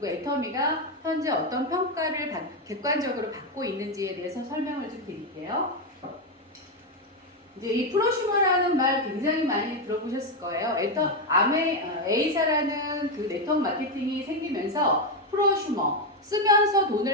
애터미가 현재 어떤 평가를 객관적으로 받고 있는지에 대해서 설명을 좀 드릴게요. 이제 이 프로슈머라는 말 굉장히 많이 들어보셨을 거예요. A사라는 그 네트워크 마케팅이 생기면서 프로슈머, 쓰면서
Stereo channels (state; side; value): normal; both; correlation 0.06